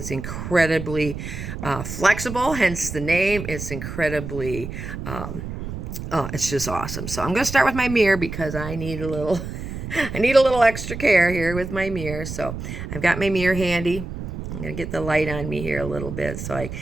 incredibly flexible, hence the name. It's incredibly it's just awesome. So I'm going to start with my mirror because I need a little extra care here with my mirror. So I've got my mirror handy. I'm going to get the light on me here a little bit so I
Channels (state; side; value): noise; right; rumble, 7 dB below the sound